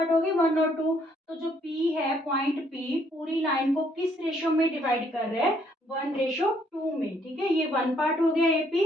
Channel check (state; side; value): normal; both; correlation 0.67